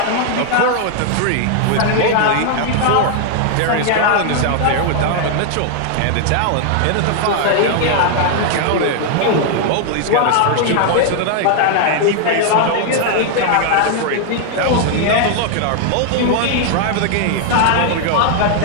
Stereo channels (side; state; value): both; different; correlation 0.00